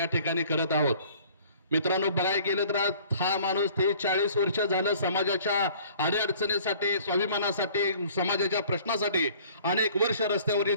ठिकाणी करत आहोत। मित्रांनो, बघायला गेलं तर हा माणूस 40 वर्ष झालं समाजाच्या अडीअडचणीसाठी, स्वाभिमानासाठी, समाजाच्या प्रश्नासाठी अनेक वर्ष रस्त्यावरील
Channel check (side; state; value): both; inverted; correlation -0.52